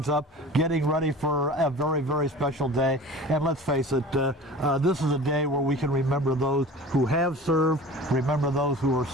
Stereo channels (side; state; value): both; normal; correlation 0.39